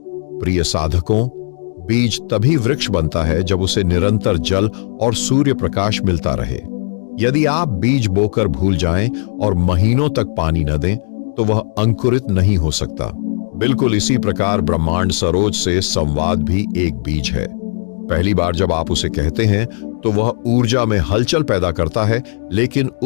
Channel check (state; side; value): silent; right; digital silence